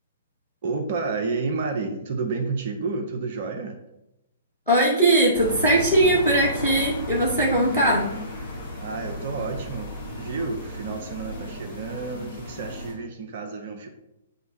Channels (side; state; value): both; inverted; correlation -0.43